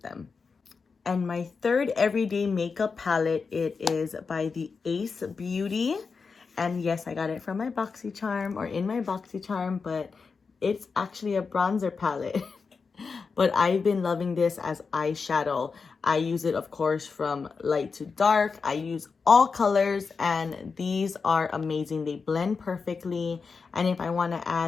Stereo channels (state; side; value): quieter; right; 5.0 dB